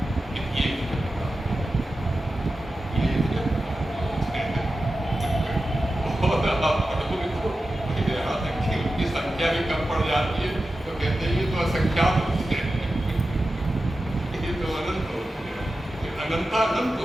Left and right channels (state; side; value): normal; both; correlation 0.93